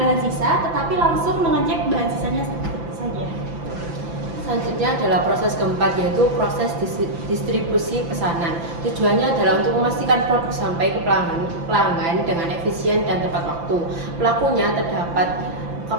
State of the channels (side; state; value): left; late; 5.9 ms